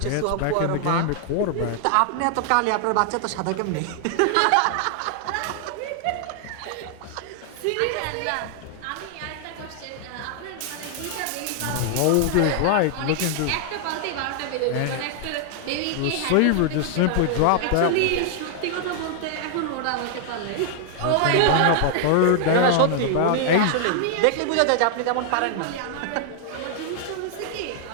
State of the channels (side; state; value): both; different; correlation 0.00